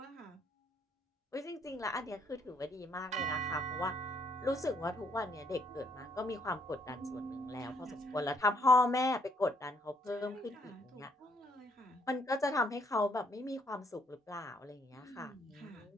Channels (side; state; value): both; normal; correlation 0.70